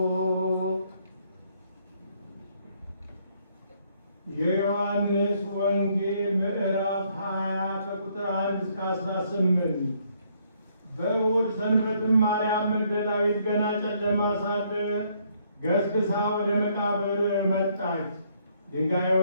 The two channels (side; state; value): both; inverted; correlation -0.68